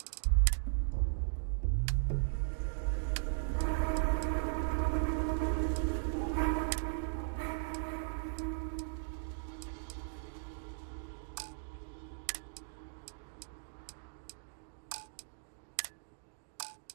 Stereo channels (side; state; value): left; silent; digital silence